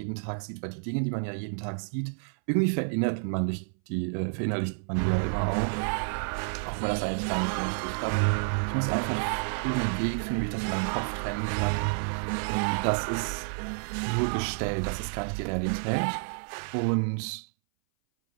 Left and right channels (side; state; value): left; silent; 58 dB below the other